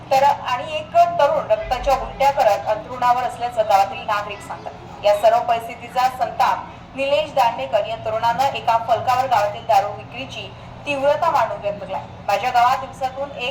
तर आणि एक तरुण रक्ताच्या उलट्या करत अंथरुणावर असल्याचं गावातील नागरिक सांगतात. या सर्व परिस्थितीचा संताप निलेश दांडेकर या तरुणानं एका फलकावर गावातील दारू विक्रीची तीव्रता मांडून व्यक्त केला. माझ्या गावात दिवसातून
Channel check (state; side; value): identical; both; correlation 1.00